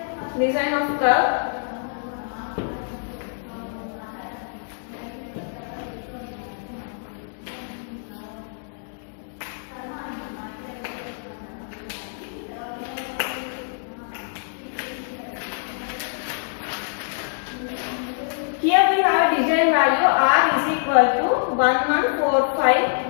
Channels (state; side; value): silent; right; digital silence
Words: design of curve, here we have design value R is equal to 1145